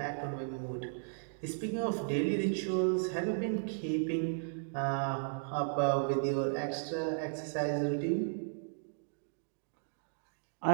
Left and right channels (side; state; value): left; silent; digital silence